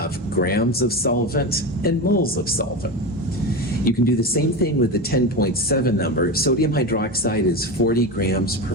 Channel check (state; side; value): normal; both; correlation 0.21